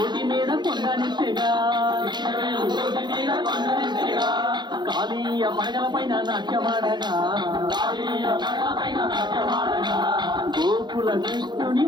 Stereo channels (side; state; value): left; late; 0.21 ms